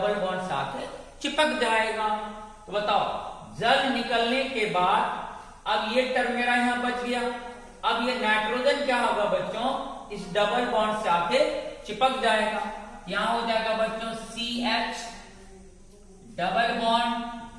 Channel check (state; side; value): identical; both; correlation 1.00